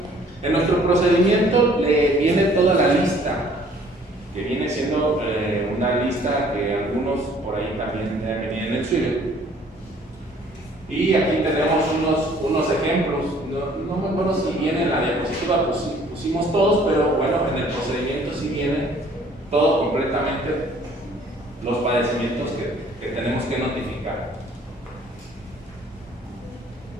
En nuestro procedimiento viene toda la lista, que viene siendo una lista que algunos por ahí también deben venir en el suyo. Y aquí tenemos unos ejemplos. No me acuerdo si viene en la diapositiva, pusimos todos, pero bueno, en el procedimiento sí viene todo completamente los padecimientos que tenemos que notificar.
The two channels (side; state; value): both; normal; correlation 0.57